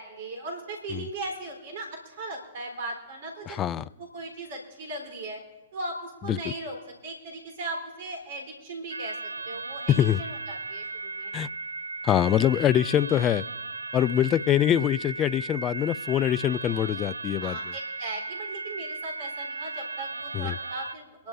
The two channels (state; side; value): quieter; right; 6.9 dB